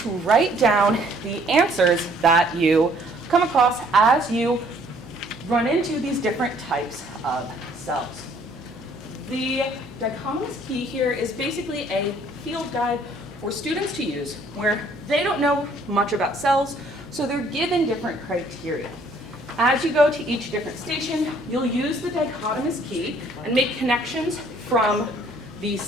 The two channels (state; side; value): noise; left; hum, 22 dB below the sound